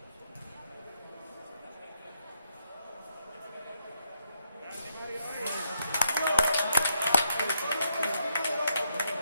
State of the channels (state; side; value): inverted; both; correlation -0.78